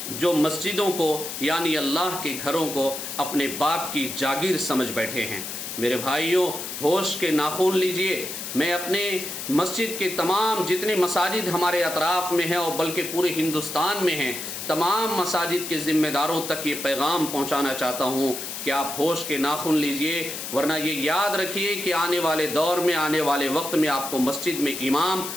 جو مسجدوں کو، یعنی اللہ کے گھروں کو اپنے باپ کی جاگیر سمجھ بیٹھے ہیں۔ میرے بھائیوں، ہوش کے ناخن لیجئے۔ میں اپنے مسجد کے تمام جتنے مساجد ہمارے اطراف میں ہیں، اور بلکہ پورے ہندوستان میں ہیں، تمام مساجد کے ذمہ داروں تک یہ پیغام پہنچانا چاہتا ہوں کہ آپ ہوش کے ناخن لیجئے، ورنہ یہ یاد رکھیے کہ آنے والے دور میں، آنے والے وقت میں آپ کو مسجد میں امام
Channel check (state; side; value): noise; left; hiss, 7 dB below the sound